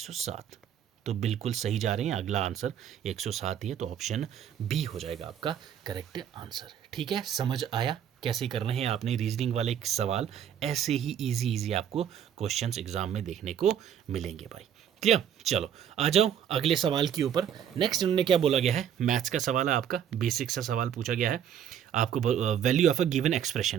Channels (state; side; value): quieter; left; 9.1 dB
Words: तो बिल्कुल सही जा रहे हैं, अगला आंसर 107 ही है, तो ऑप्शन बी हो जाएगा आपका करेक्ट आंसर। ठीक है, समझ आया कैसे करने हैं आपने रीजनिंग वाले सवाल। ऐसे ही इजी आपको क्वेश्चंस एग्जाम में देखने को मिलेंगे भाई। क्लियर, चलो आ जाओ अगले सवाल के ऊपर। नेक्स्ट इन्होंने क्या बोला गया है, मैथ्स का सवाल है आपका, बेसिक सा सवाल पूछा गया है आपको, value of a given